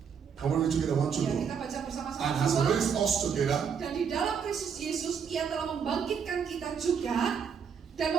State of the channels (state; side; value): quieter; left; 6.9 dB